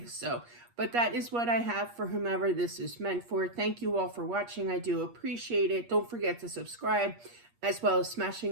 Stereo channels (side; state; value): left; late; 8.4 ms